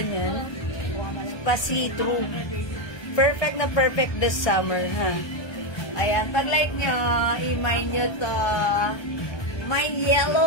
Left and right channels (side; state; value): right; late; 1.2 ms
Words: niyan. Pa-see-through. Perfect na perfect this summer, ha? Ayan, pag like nyo, i-mine nyo to. Mine